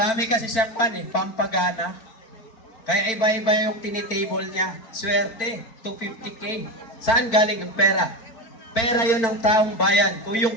kasi siyang pampagana. Kaya iba-iba yung tinitable niya. Swerte, 250K. Saan galing ang pera? Pera yon ng taong bayan. Kung yung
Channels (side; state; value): right; late; 4.4 ms